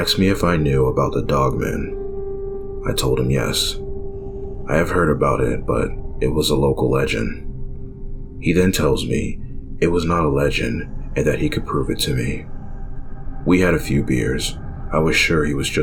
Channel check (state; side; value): identical; both; correlation 1.00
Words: me if I knew about the Dogman. I told him yes. I have heard about it, but it was a local legend. He then tells me it was not a legend and that he could prove it to me. We had a few beers. I was sure he was